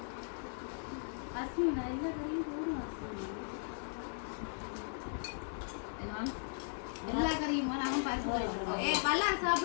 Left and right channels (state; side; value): silent; right; 53 dB below the other